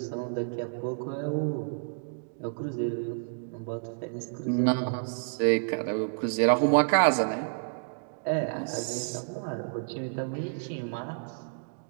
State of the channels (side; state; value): left; silent; digital silence